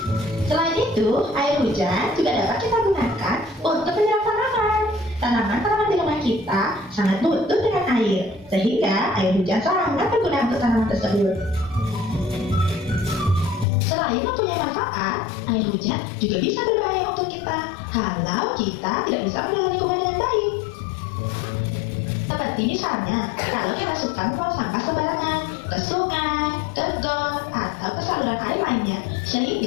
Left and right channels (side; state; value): right; drops out; at 13.7 s